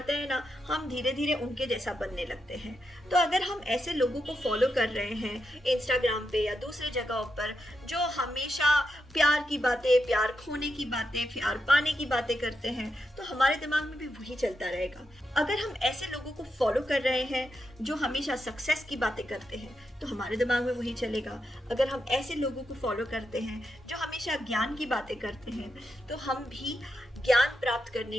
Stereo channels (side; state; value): both; normal; correlation 0.85